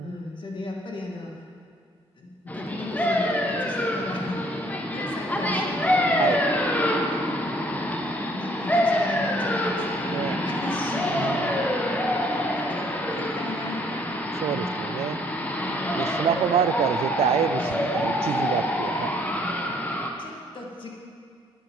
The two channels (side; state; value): both; normal; correlation 0.62